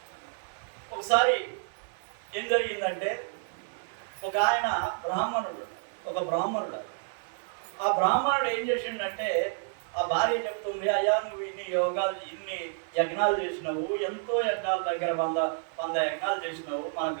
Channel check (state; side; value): silent; left; 58 dB below the other